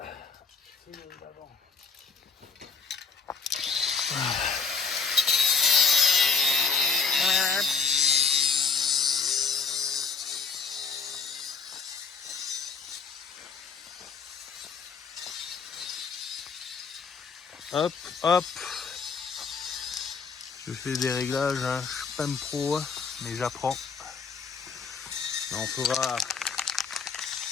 Hop, hop. Je fais des réglages, hein. Je suis pas un pro, mais j'apprends.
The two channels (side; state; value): right; quieter; 5.3 dB